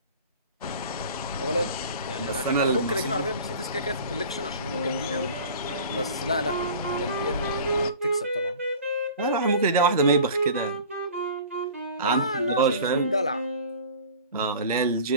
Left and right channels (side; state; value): both; inverted; correlation -0.41